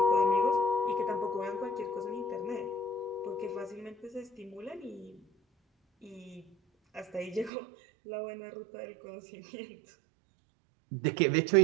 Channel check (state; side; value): drops out; left; at 7.5 s